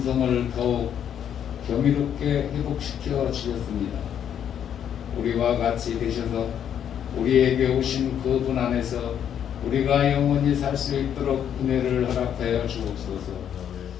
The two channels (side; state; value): right; quieter; 9.2 dB